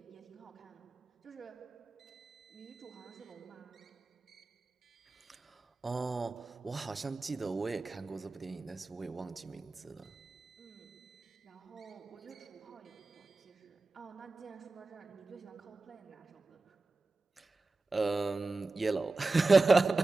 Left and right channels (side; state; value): left; quieter; 3.4 dB